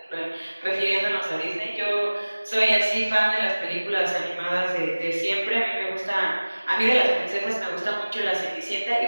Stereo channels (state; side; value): inverted; both; correlation -1.00